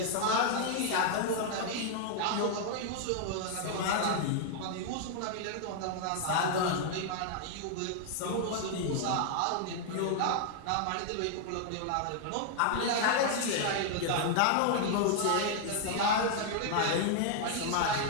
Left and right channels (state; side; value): different; both; correlation 0.00